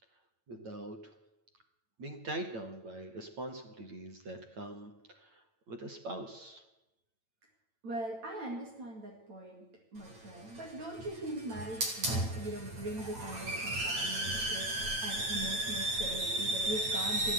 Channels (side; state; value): left; late; 9.0 ms